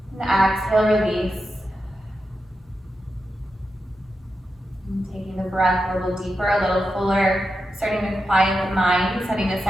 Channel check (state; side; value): normal; both; correlation 0.89